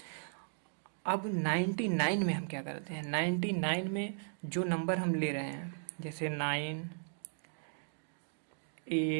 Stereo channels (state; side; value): silent; left; digital silence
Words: अब 99 में हम क्या करते हैं, 99 में जो नंबर हम ले रहे हैं, जैसे 9